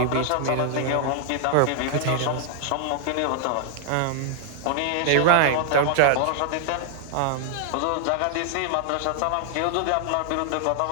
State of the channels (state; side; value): different; both; correlation -0.01